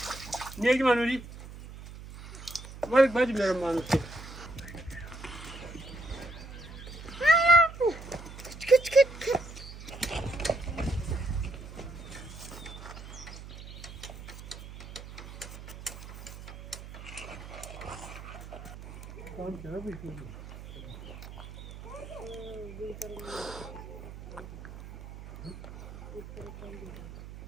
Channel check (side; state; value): right; noise; hum, 13 dB below the sound